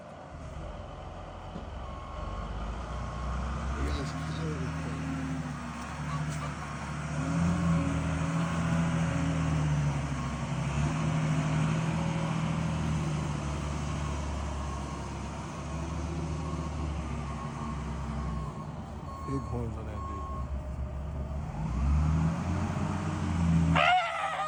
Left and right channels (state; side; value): identical; both; correlation 1.00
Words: Big ass cow. Big horns on that bitch.